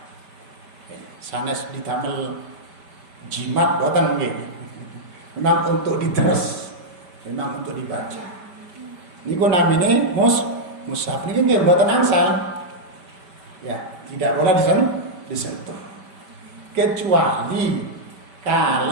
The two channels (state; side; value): late; left; 5.1 ms